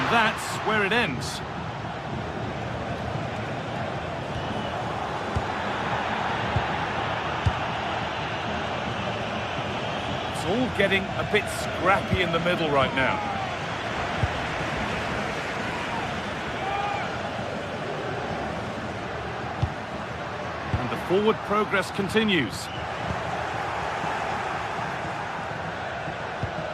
that's where it ends. It's all getting a bit scrappy in the middle right now. And the forward progress continues.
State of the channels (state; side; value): identical; both; correlation 1.00